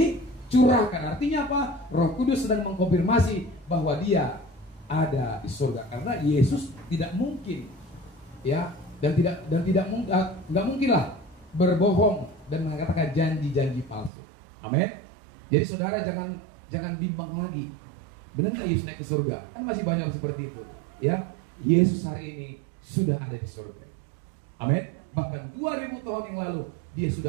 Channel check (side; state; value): left; drops out; at 14.1 s